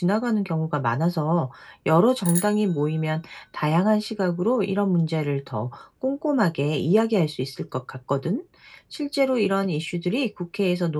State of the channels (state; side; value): identical; both; correlation 1.00